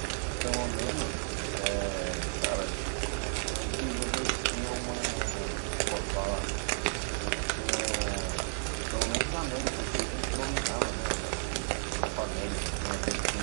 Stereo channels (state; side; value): silent; left; 56 dB below the other